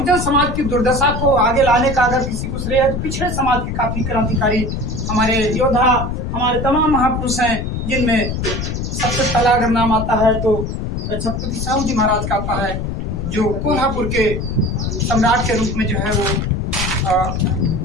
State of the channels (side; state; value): left; noise; rumble, 3 dB below the sound